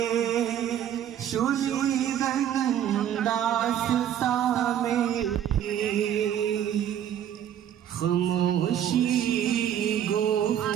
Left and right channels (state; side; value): quieter; left; 10.2 dB